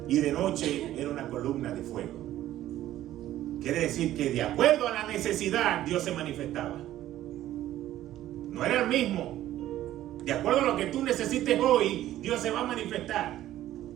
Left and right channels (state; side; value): quieter; left; 13.5 dB